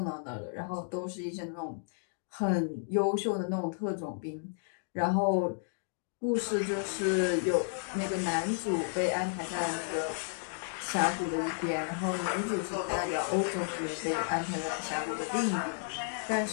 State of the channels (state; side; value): silent; right; digital silence